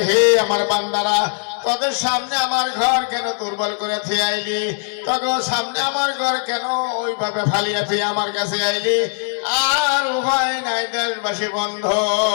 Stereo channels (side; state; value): right; silent; digital silence